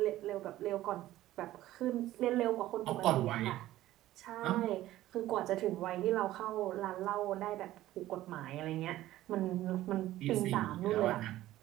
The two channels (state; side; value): quieter; left; 14.9 dB